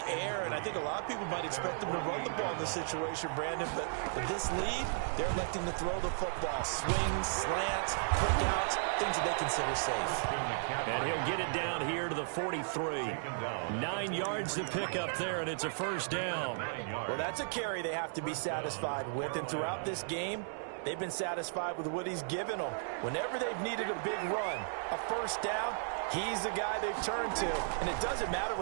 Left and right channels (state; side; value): silent; left; digital silence